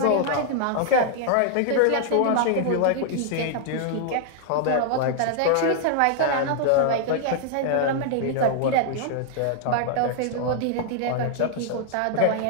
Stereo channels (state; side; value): different; both; correlation -0.01